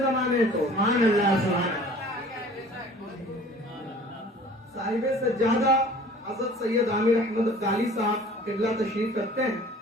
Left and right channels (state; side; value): normal; both; correlation 0.48